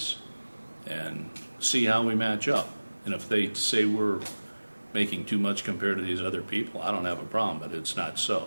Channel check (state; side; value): inverted; both; correlation -1.00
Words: and see how we match up. And if they say we're making too much compared to these other people, I don't have a problem, but it's not